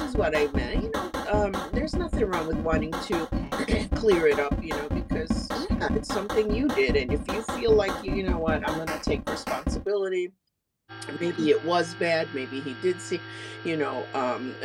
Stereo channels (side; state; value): both; identical; correlation 1.00